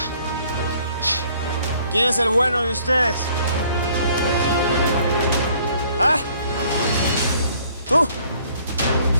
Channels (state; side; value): inverted; both; correlation -0.60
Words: ¿Quién es el bueno de ustedes? ¿Ah? ¿Tú?